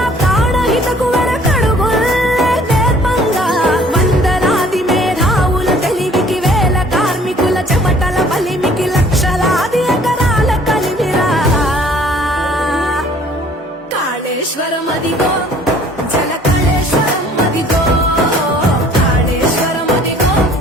ప్రాణహితకు వెనకడుగుల్లే నేర్పంగా వందలాది మేధావుల తెలివికి వేల కార్మికుల చెమటల బలిమికి లక్షలాది ఎకరాల కలిమిరా కాళేశ్వరం అదిగో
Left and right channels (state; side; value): normal; both; correlation 0.55